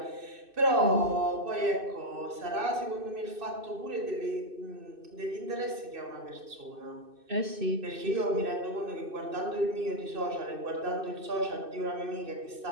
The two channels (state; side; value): late; left; 2.6 ms